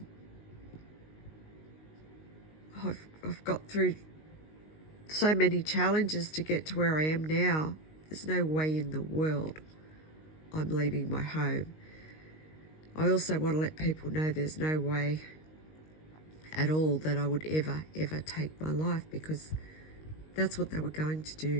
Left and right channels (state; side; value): late; right; 19 ms